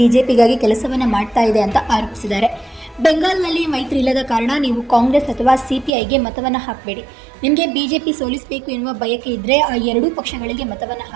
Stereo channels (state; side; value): drops out; left; at 5.9 s